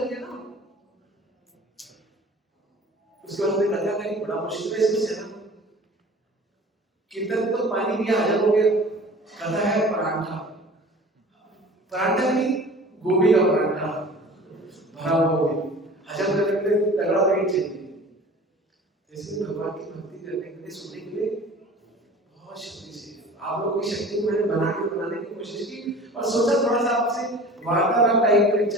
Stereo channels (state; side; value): normal; both; correlation 0.42